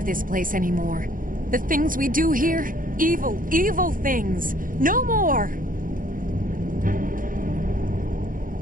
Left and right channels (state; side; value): late; left; 0.40 ms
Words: this place anymore. The things we do here, evil, evil things. No more!